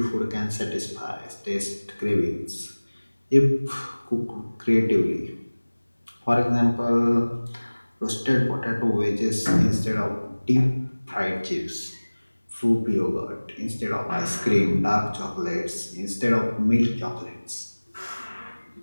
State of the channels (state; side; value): inverted; both; correlation -1.00